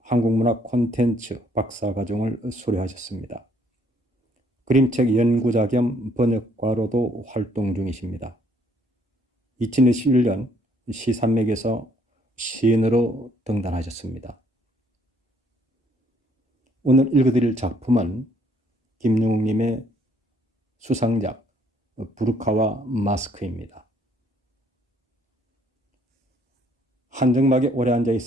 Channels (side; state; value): both; normal; correlation 0.65